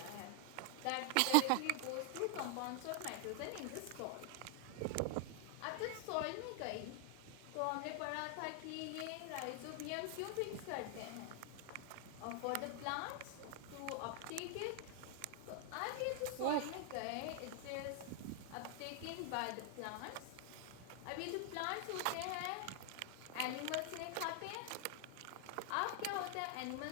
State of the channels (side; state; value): both; different; correlation 0.00